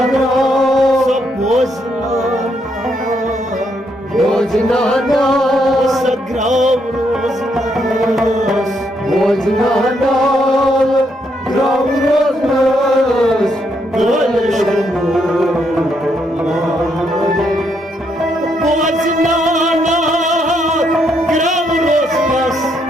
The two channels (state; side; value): normal; both; correlation 0.76